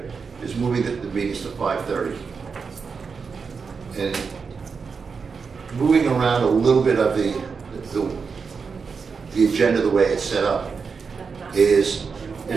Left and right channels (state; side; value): quieter; left; 5.4 dB